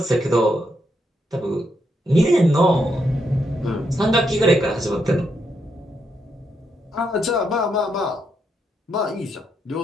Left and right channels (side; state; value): both; normal; correlation 0.79